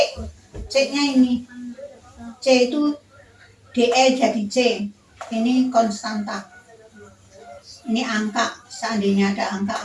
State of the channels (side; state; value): both; identical; correlation 1.00